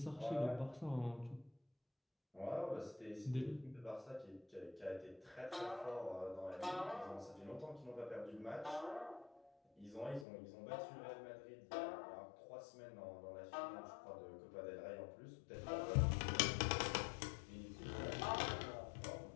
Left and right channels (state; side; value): drops out; right; at 10.2 s